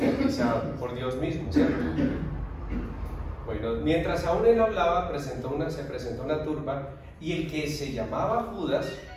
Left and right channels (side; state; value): both; identical; correlation 1.00